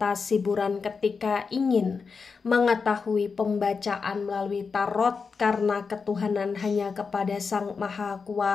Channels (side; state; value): right; quieter; 5.1 dB